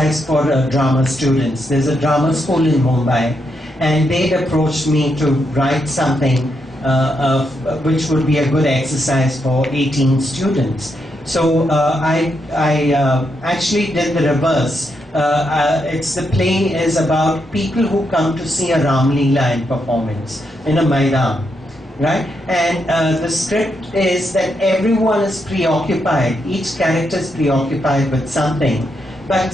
for drama students. There's a drama school in Mumbai, and they'd approached me to write something which would be a good exercise for 18 students. So I actually did the reverse. The play is about people who come to see a Ram Leela in performance in a Maidan. Right? And the script is that everyone is preoccupied, each character is preoccupied with something, but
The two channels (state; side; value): normal; both; correlation 0.81